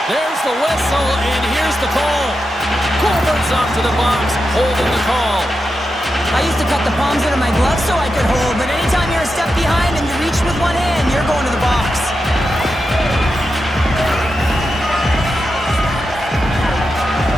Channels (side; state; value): both; normal; correlation 0.89